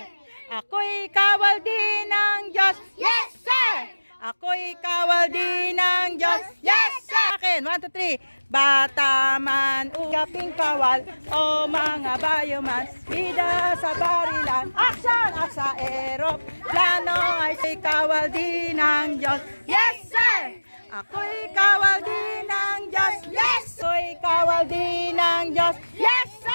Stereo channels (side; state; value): both; inverted; correlation -1.00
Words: Ako'y kawal din ng Diyos. Yes, sir! Ako'y kawal din ng Diyos. Yes, sir! Akin, 1, 2, 3. Bata man ugaping kawal, o mga bayoman, bida sa barilan, action! At sa eroplano ay kawal din ng Diyos. Yes, sir! Ako'y kawal din ng Diyos. Yes! Ako'y kawal din ng Diyos. Yes,